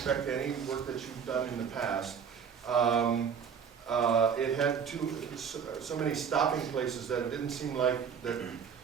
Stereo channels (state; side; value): quieter; left; 7.1 dB